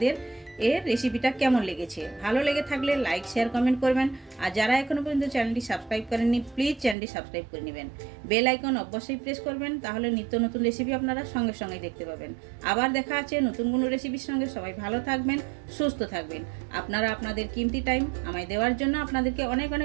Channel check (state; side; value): drops out; left; at 7.0 s